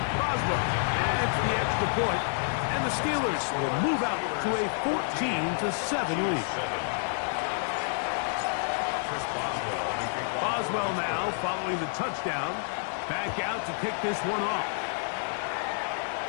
Boswell adds the extra point, and the Steelers will move out to a 14-7 lead. Boswell now following the touchdown. Back out to kick this one off.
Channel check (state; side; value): silent; right; digital silence